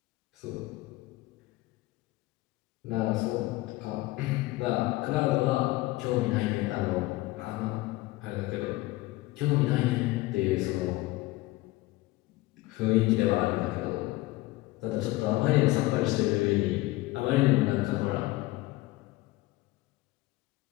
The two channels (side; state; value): right; quieter; 19.3 dB